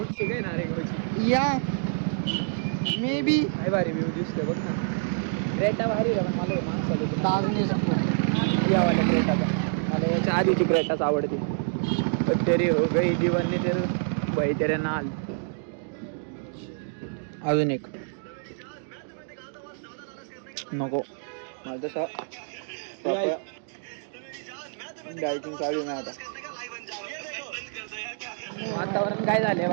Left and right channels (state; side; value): silent; left; digital silence